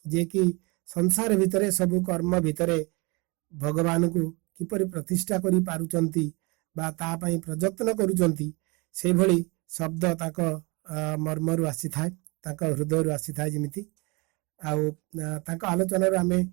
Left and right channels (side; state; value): left; quieter; 27.6 dB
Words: ଯିଏକି ସଂସାର ଭିତରେ ସବୁ କର୍ମ ଭିତରେ ଭଗବାନଙ୍କୁ କିପରି ପ୍ରତିଷ୍ଠା କରି ପାରୁଛନ୍ତି ବା ତା ପାଇଁ ପ୍ରଯତ୍ନ କରୁଛନ୍ତି, ସେଇଭଳି ଶବ୍ଦ ତାଙ୍କ ମର୍ମରୁ ଆସିଥାଏ, ତାଙ୍କ ହୃଦୟରୁ ଆସିଥାଏ ଯେମିତି। ଆଉ ତାଙ୍କ ଆଲୋଚନାରୁ ଆମେ